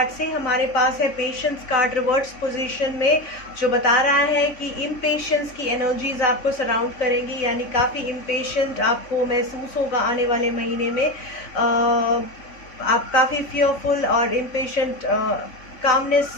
से। हमारे पास है पेशेंस कार्ड रिवर्स पोजीशन में, जो बता रहा है कि इम्पेशेंस की एनर्जीज आपको सराउंड करेंगी, यानी काफ़ी इम्पेशेंट आपको महसूस होगा आने वाले महीने में। आप काफ़ी फियरफुल और इम्पेशेंट, कामनेस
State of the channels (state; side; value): late; right; 3.5 ms